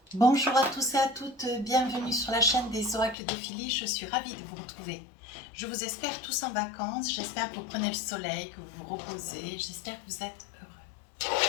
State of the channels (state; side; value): drops out; right; at 3.2 s